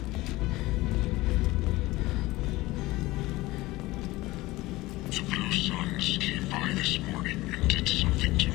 The Blue Suns came by this morning and did something to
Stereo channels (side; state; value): right; quieter; 19.5 dB